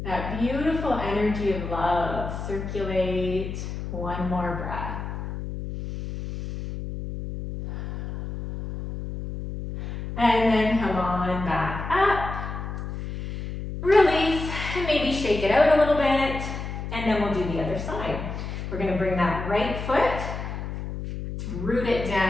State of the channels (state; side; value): noise; left; hum, 6 dB below the sound